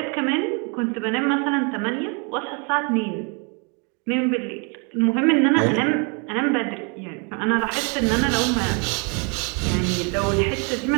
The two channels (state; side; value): quieter; left; 34.7 dB